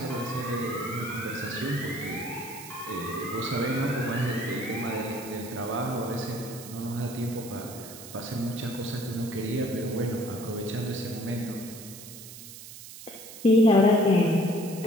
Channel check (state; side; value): noise; right; hiss, 14 dB below the sound